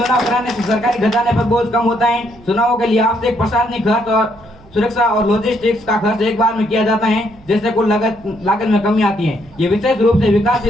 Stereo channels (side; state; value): right; noise; hum, 25 dB below the sound